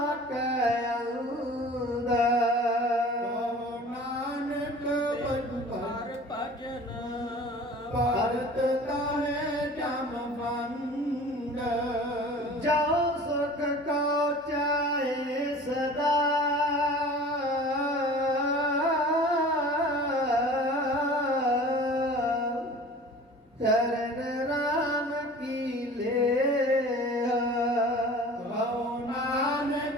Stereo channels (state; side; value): normal; both; correlation 0.42